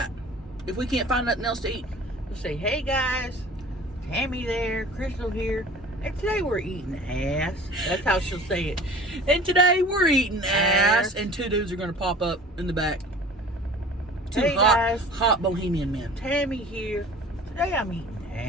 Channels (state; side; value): normal; both; correlation 0.44